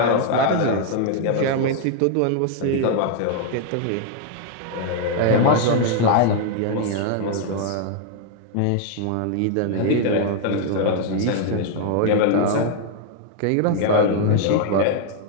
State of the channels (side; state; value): both; different; correlation 0.00